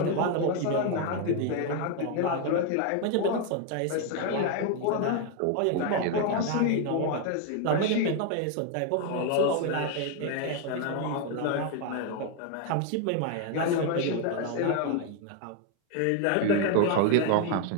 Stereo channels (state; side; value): different; both; correlation 0.01